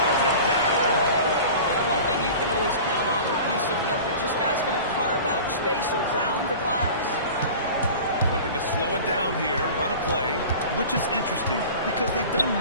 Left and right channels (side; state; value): both; inverted; correlation -0.38